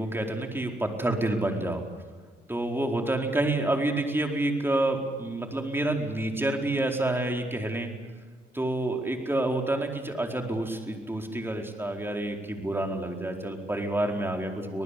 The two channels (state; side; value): normal; both; correlation 0.76